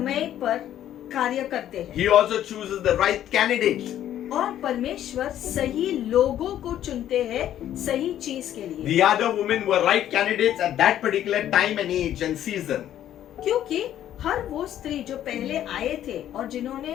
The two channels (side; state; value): right; quieter; 11.5 dB